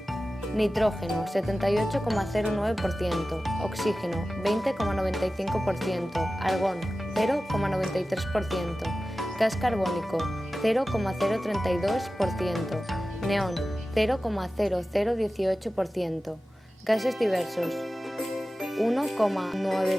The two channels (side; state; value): both; normal; correlation 0.95